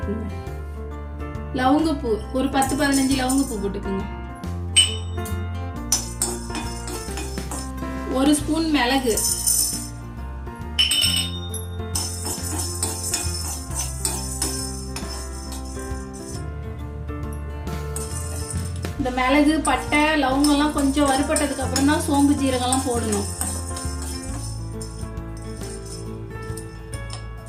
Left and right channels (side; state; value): both; identical; correlation 1.00